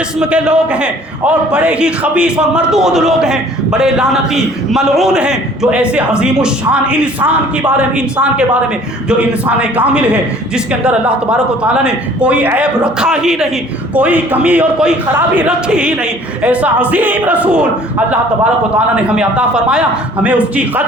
کے لوگ ہیں اور بڑے ہی خبیث اور مردود لوگ ہیں، بڑے لعنتی ملعون ہیں جو ایسے عظیم الشان انسان کے بارے میں جو انسان کامل ہے، جس کے اندر اللہ تبارک و تعالیٰ نے کوئی عیب رکھا ہی نہیں، کوئی کمی اور کوئی خرابی رکھی ہی نہیں، ایسا عظیم رسول اللہ تبارک و تعالیٰ نے ہمیں عطا فرمایا۔ ہمیں اس کی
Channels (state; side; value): normal; both; correlation 0.53